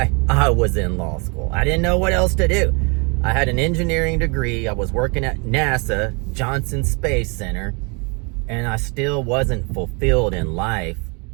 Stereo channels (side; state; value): left; quieter; 32.6 dB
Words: I was in law school. I didn't know what else to do. I had an engineering degree. I was working at NASA, Johnson Space Center, and I still wasn't fulfilled in life.